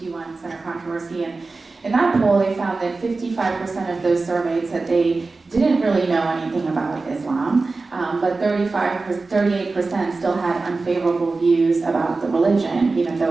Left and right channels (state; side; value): quieter; left; 3.7 dB